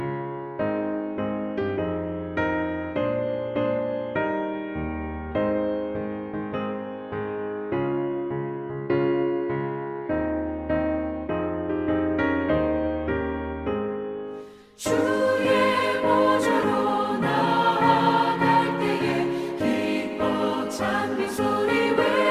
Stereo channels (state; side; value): identical; both; correlation 1.00